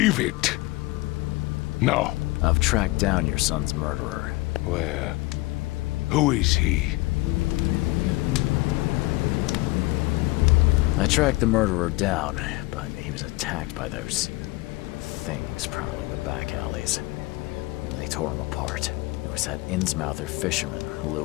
it. No. I've tracked down your son's murderer. Where? Who is he? I tracked the murderer down, but he was attacked by those things prowling the back alleys. They tore him apart. There was that Innsmouther fisherman,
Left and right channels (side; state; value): right; quieter; 20.7 dB